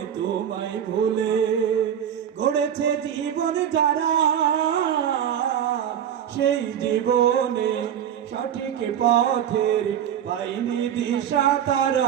তোমায় ভুলে গড়েছে জীবন যারা, সেই জীবনে সঠিক পথের পাইনি দিশা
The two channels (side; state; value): left; quieter; 9.4 dB